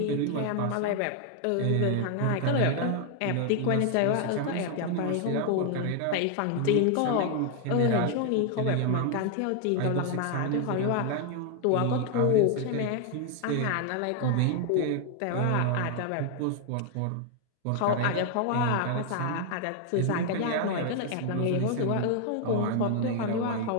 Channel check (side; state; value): both; different; correlation 0.00